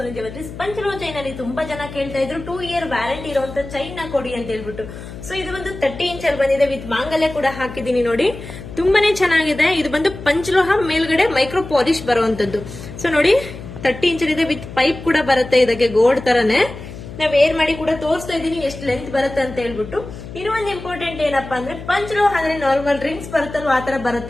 jewelleries. ಪಂಚಲೋ chain ಅಲ್ಲಿ ತುಂಬಾ ಜನ ಕೇಳ್ತಾ ಇದ್ರು 2 ಇಯರ್ ವ್ಯಾರಂಟಿ ಇರುವಂತ ಚೈನ್ ನ ಕೊಡಿ ಅಂತ ಹೇಳ್ಬಿಟ್ಟು. ಸೊ ಇದು ಒಂದು 30 ಇಂಚ್ ಅಲ್ಲಿ ಬಂದಿದೆ, ವಿತ್ ಮಾಂಗಲ್ಯ ಕೂಡ ಹಾಕಿದೀನಿ ನೋಡಿ. ತುಂಬಾನೇ ಚೆನ್ನಾಗಿದೆ. ಇದು ಬಂದು ಪಂಚಲೋಹ ಮೇಲ್ಗಡೆ ಮೈಕ್ರೋ ಪಾಲಿಶ್ ಬರುವಂತದ್ದು. ಸೊ ನೋಡಿ 30 ಇಂಚ್ ಇದೆ, ವಿತ್ ಪೈಪ್ ಕೂಡ ಬರುತ್ತೆ ಇದಕ್ಕೆ ಗೋಲ್ಡ್ ತರನೇ. ನಾವ್ ವೇರ್ ಮಾಡಿ ಕೂಡ ತೋರಿಸ್ತಾ ಇದೀನಿ ಎಷ್ಟು ಲೆಂತ್ ಬರುತ್ತೆ ಅಂತ ಹೇಳ್ಬಿಟ್ಟು. ಇನ್ನೊಂದು ಇಂಪಾರ್ಟೆಂಟ್ ಏನಪ್ಪಾ ಅಂದ್ರೆ ಪಂಚಲೋಹ ಅಂದ್ರೆ ನಾರ್ಮಲ್ ರಿಂಗ್ಸ್ ಬರುತ್ತಲ್ವ ಆತರ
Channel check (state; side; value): noise; left; hum, 12 dB below the sound